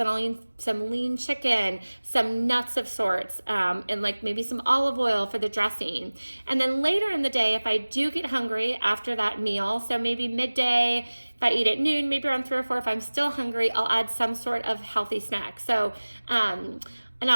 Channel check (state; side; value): inverted; both; correlation -1.00